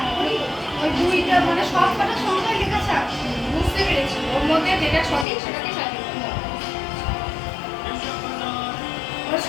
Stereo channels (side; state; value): right; drops out; at 5.2 s